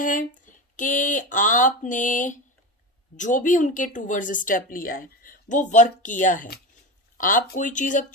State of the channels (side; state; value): both; normal; correlation 0.23